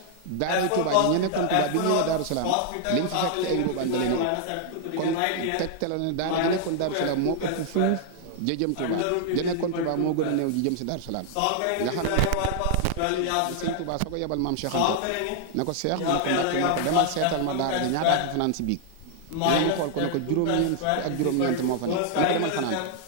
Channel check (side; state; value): both; different; correlation 0.00